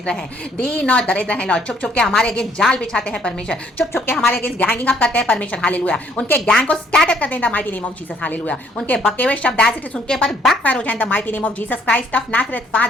हैं, दीन और दरिद्र हैं लॉर्ड। छुप छुप के हमारे अगेंस्ट जाल बिछाते हैं परमेश्वर, छुप छुप के हमारे अगेंस्ट गैंगिंग अप करते हैं परमेश्वर, हालेलुया। उनके गैंग को स्कैटर कर दें the mighty name of Jesus, hallelujah. उनके बके हुए शब्द एज इट इज उनके ऊपर बैकफायर हो जाए the mighty name of Jesus Christ of Nazareth.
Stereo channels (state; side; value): normal; both; correlation 0.64